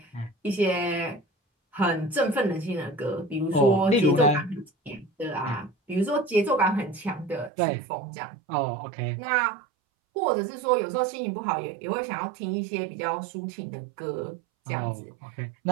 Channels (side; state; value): left; drops out; at 7.5 s